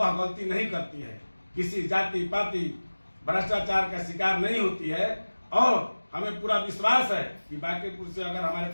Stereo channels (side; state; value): both; inverted; correlation -1.00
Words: गलती नहीं करती है, किसी जाति पाति भ्रष्टाचार का शिकार नहीं होती है, और हमें पूरा विश्वास है कि बांकीपुर से अगर हमारे